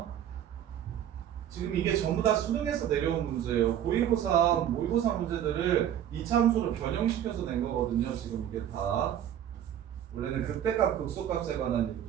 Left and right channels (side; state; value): left; quieter; 10.4 dB